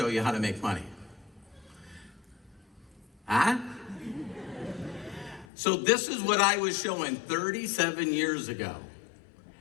you how to make money. Huh? So this is what I was showing 37 years ago.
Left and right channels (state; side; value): drops out; right; at 5.5 s